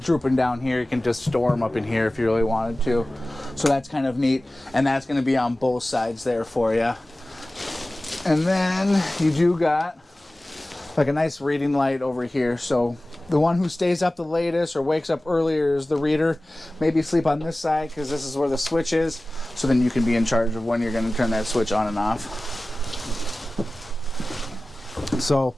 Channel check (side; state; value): both; normal; correlation 0.97